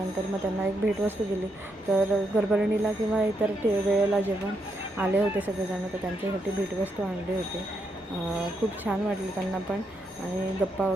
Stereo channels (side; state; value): both; normal; correlation 0.80